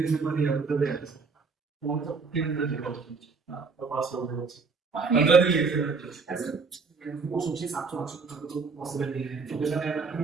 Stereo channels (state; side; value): quieter; left; 4.7 dB